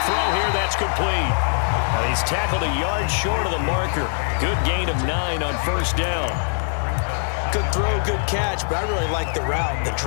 throw here. That's complete. Now he's tackled a yard short of the marker. Good gain of 9 on first down. Good throw, good catch, but I really like the route. The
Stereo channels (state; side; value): silent; right; digital silence